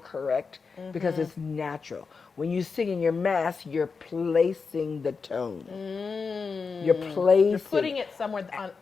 because it's natural. When you sing in your mask, you're placing the tone. You're placing. You're putting it somewhere on.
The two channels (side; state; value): right; quieter; 5.0 dB